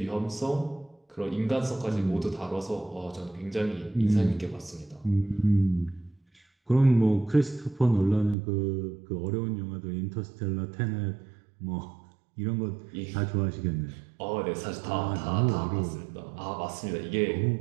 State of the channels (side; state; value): left; drops out; at 8.3 s